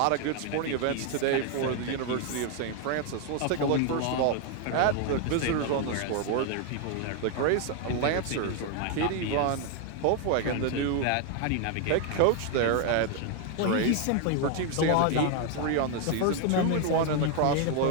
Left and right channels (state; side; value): different; both; correlation 0.01